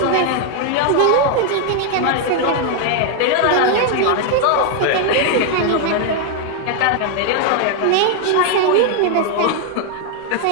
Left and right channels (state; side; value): different; both; correlation 0.00